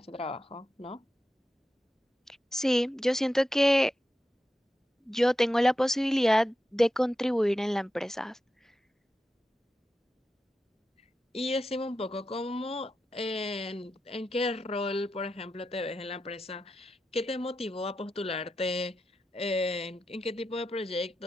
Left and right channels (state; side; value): normal; both; correlation 0.89